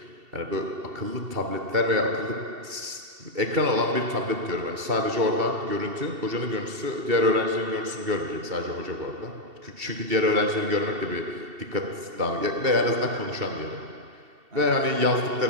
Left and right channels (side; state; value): left; late; 2.7 ms